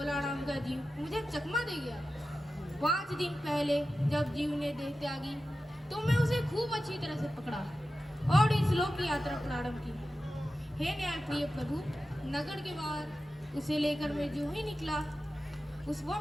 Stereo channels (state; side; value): normal; both; correlation 0.93